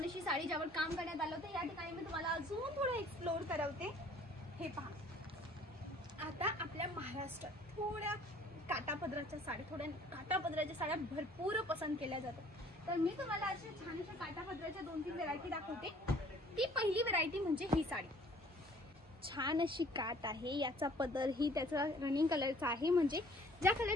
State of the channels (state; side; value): normal; both; correlation 0.55